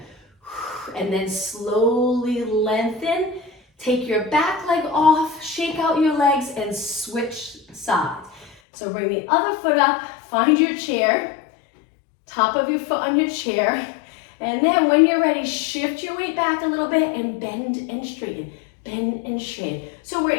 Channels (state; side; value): drops out; right; at 8.6 s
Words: And then slowly lengthen. Take your back leg off, shake out your legs, and switch sides. So bring the other foot up, find your chair, top of your foot on your chair, and then when you're ready, shift your weight back a little bit and bend and straighten, bend and straighten. So we're